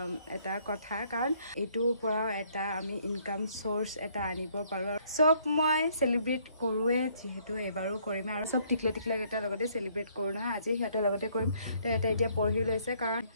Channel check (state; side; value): inverted; both; correlation -0.65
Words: এটা কথা কাৰণ এইটোৰ পৰাও এটা আমি ইনকাম চ'ৰ্চ এটা আনিব পাৰোঁ চব মই চেলিব্ৰেট কৰোঁৱে যিহেতু এবাৰো কৰিম আৰু চব টিকলেকেইটাৰ লগতে চেলিব্ৰেট কৰোঁ নহয় আজি সিহঁতৰ লগতে কৰিম তো এতিয়া পঢ়ি লৈছে কাৰণ